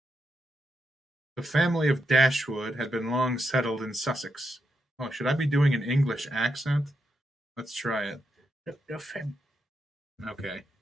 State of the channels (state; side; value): normal; both; correlation 0.83